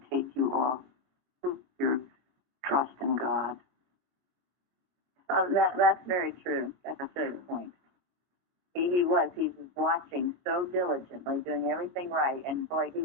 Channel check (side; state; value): left; late; 22 ms